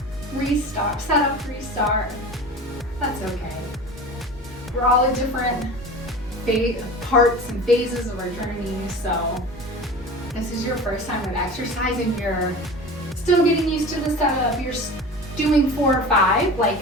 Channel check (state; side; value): normal; both; correlation 0.35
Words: restart, setup, restart. That's okay. We're all at different parts and phases of our journey, so this is your first time with exercise and you're still getting used to the setup, you're doing 4 or 5, like